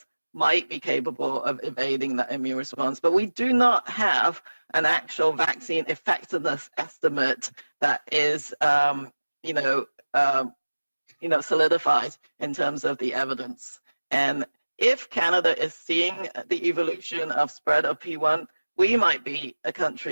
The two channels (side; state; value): both; inverted; correlation -1.00